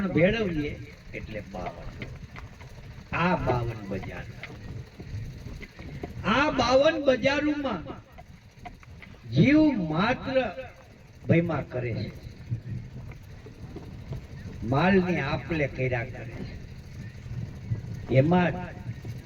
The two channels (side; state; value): both; identical; correlation 1.00